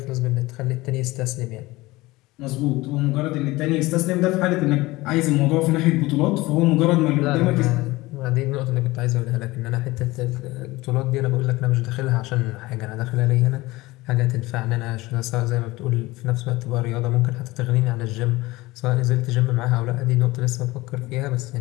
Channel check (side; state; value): right; quieter; 20.2 dB